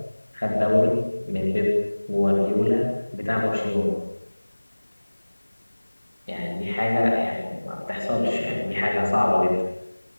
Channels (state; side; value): inverted; both; correlation -1.00